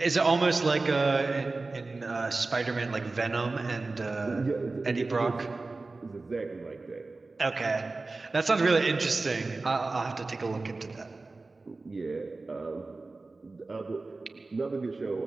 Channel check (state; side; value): quieter; left; 3.5 dB